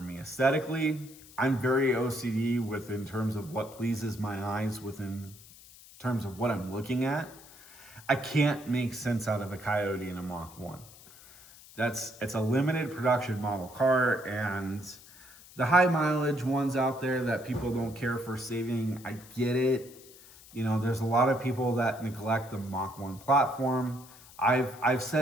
me. Aesthetically, I'm very OCD in terms of what pleases my eyes within terms of what I'm looking at. I can't make sense out of a Coyote in a Mach 1. It's a limited production model car, and the high mileage ones out there that people don't care for saving, I get it. You know, there's a lot of people that neglect the Mach 1 platform. I've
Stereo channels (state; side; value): noise; left; hiss, 21 dB below the sound